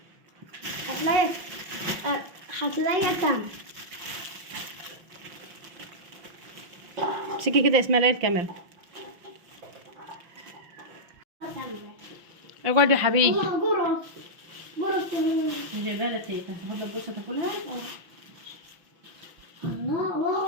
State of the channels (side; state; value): left; late; 5.9 ms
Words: هتلاقي تاني. امسكي كده يا اسماء الكاميرا. اقعد يا حبيبي. والله قرص جايبها لك تيتا، تاخد لك بصه تاكلها. الله